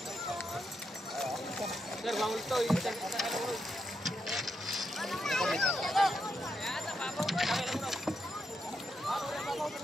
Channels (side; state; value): both; normal; correlation 0.83